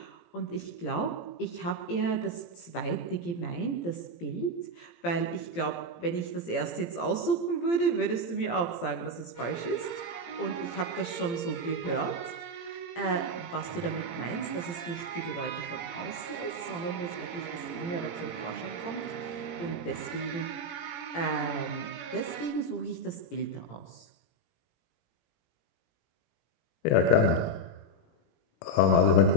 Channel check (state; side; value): late; right; 17 ms